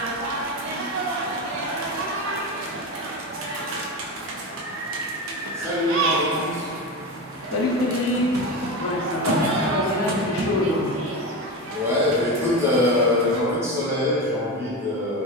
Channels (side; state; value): both; normal; correlation 0.20